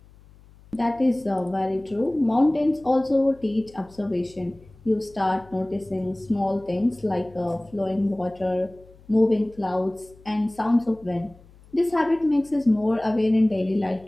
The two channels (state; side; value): noise; left; hum, 25 dB below the sound